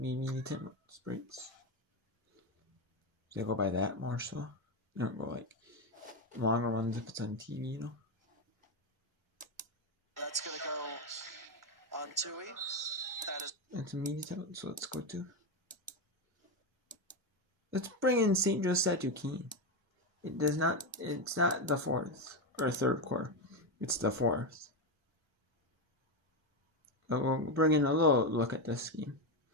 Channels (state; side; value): normal; both; correlation 0.10